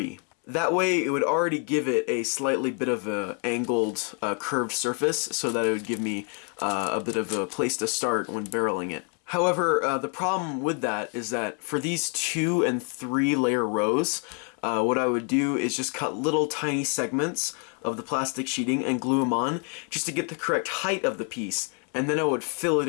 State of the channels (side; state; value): right; quieter; 39.3 dB